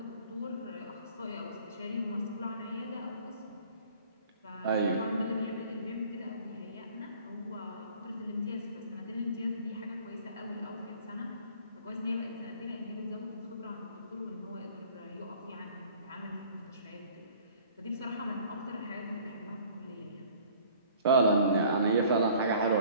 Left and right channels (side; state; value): both; inverted; correlation -0.51